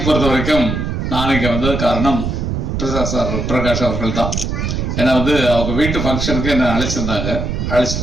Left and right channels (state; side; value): noise; right; rumble, 2 dB below the sound